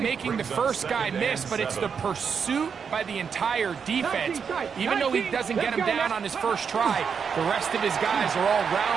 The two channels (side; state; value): left; quieter; 6.5 dB